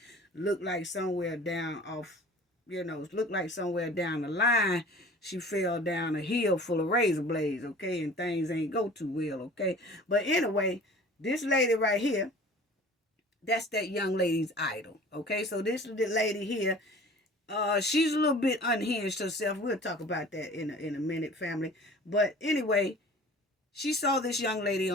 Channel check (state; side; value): normal; both; correlation 0.45